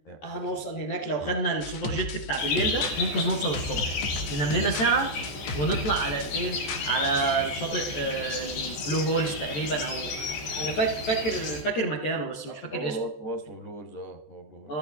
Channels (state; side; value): late; right; 14 ms